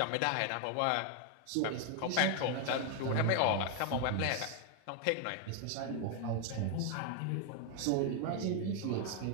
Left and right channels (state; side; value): different; both; correlation 0.00